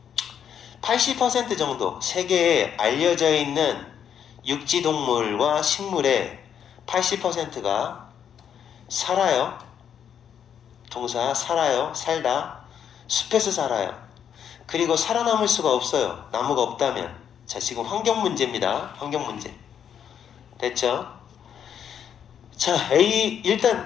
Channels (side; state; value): right; quieter; 8.6 dB